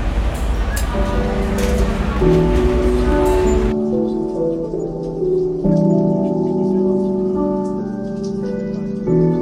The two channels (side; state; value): both; identical; correlation 1.00